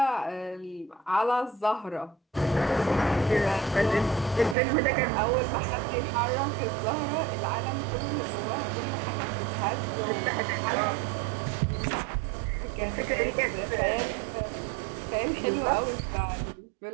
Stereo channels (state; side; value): drops out; left; at 4.5 s